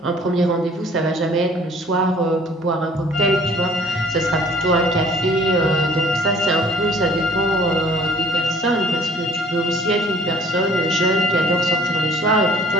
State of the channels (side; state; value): both; normal; correlation 0.54